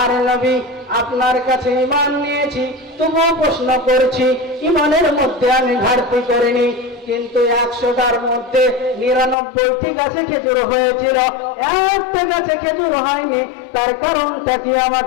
নবী, আপনার কাছে ঈমান নিয়েছি, তবুও প্রশ্ন করছি, ঈমানের মধ্যে আমি ঘাটতি করিনি, কিন্তু 100টার মধ্যে 99টি গাছে খেজুর হয়েছিল, একটা গাছে খেজুর হয়নি, তার কারণটা কি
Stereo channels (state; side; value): drops out; right; at 9.3 s